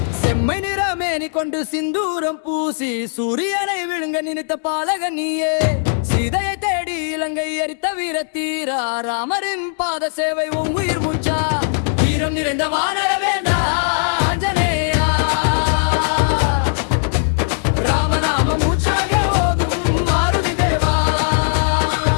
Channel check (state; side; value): silent; right; 67 dB below the other